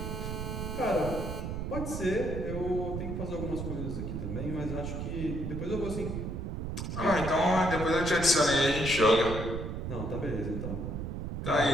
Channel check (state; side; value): noise; right; rumble, 4 dB below the sound